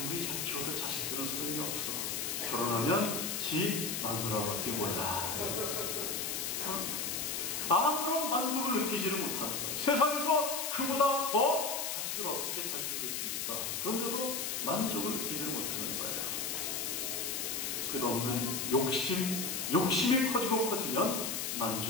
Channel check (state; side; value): noise; left; hiss, 2 dB below the sound